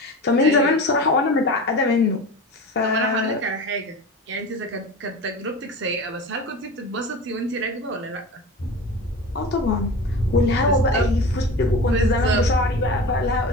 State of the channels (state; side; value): normal; both; correlation 0.32